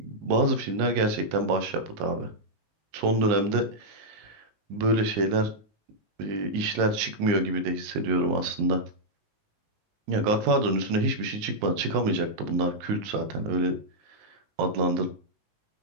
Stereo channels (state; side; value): late; left; 19 ms